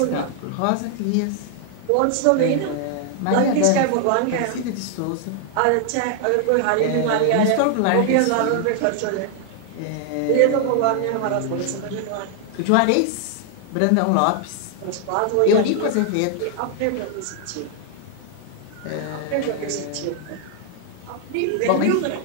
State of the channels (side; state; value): both; different; correlation 0.00